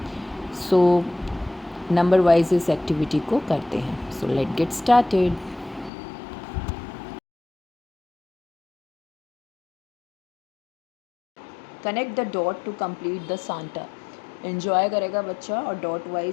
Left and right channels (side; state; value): right; drops out; at 5.9 s